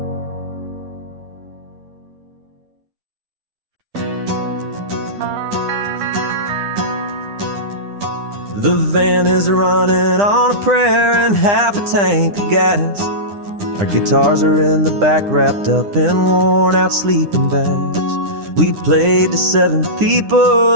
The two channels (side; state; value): left; late; 9.9 ms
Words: The van is running on a prayer and half a tank of gas. Our guitars are in the back, wrapped up in worn-out sleeping bags. We played to 7